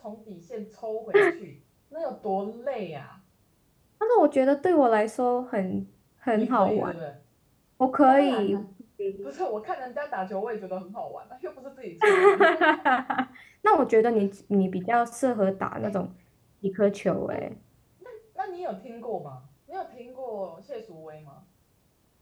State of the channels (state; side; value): identical; both; correlation 1.00